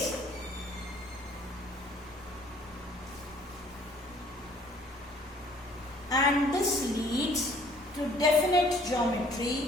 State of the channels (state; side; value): normal; both; correlation 0.58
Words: and this leads to definite